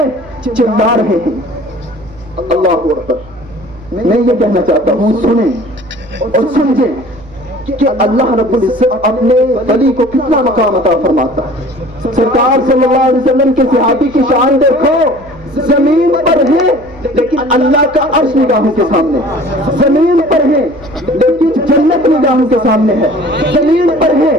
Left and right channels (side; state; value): right; noise; hum, 22 dB below the sound